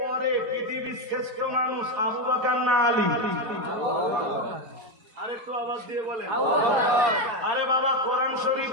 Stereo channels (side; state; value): left; late; 4.4 ms